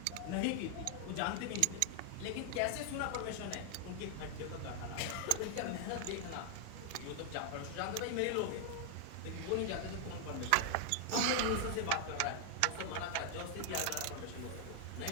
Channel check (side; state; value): both; different; correlation 0.00